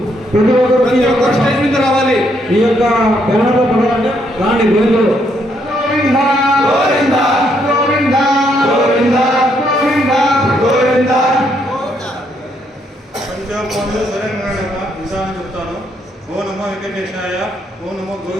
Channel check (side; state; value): both; normal; correlation 0.73